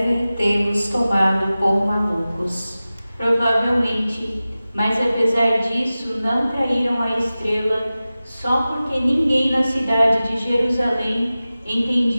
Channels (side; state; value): both; inverted; correlation -0.96